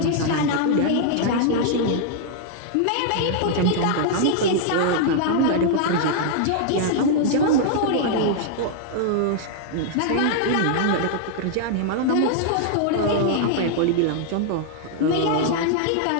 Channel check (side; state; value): both; different; correlation -0.01